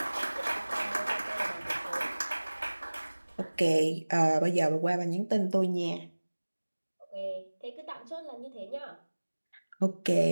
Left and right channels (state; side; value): inverted; both; correlation -1.00